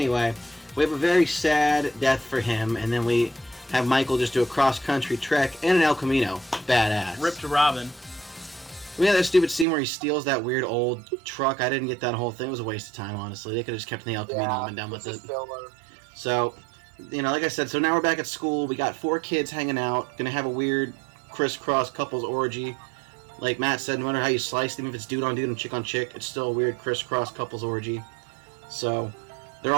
we have a very sad death for him, and then we have Michael just do a cross-country trek and an El Camino. Badass. Rip to Robin. We had that stupid scene where he steals that weird old truck. I didn't get that whole thing. It was a waste of time, honestly. They could have just kept the El Camino and been done with it. So, you know, like I said, so now we're back at school. We got 4 kids hanging out. Gonna have a weird crisscross couples orgy. Like Matt said, no matter how you slice them, if it's dude on dude and chick on chick, it's still a weird crisscross couples orgy. So, they're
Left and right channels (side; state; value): left; drops out; at 9.7 s